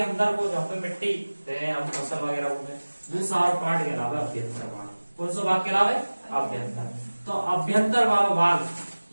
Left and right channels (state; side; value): inverted; both; correlation -1.00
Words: अंदर को जहाँ पे मिट्टी हम फसल वगैरह होंगे दूसरा पार्ट कहलावे अभ्यंतर वाला। कौन सा भाग कहलावे? अभ्यंतर। तो अभ्यंतर वाला भाग